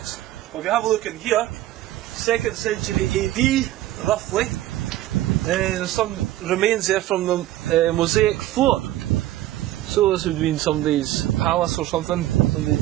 Well, if you have a look in here, 2nd century AD, roughly, there's some remains there from the mosaic floor. So this would have been somebody's palace or something,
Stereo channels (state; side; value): quieter; left; 14.6 dB